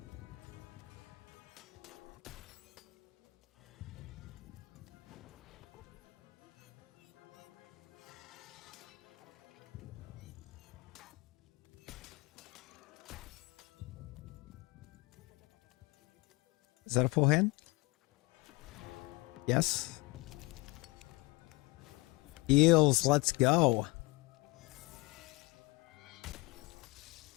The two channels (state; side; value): quieter; right; 23.9 dB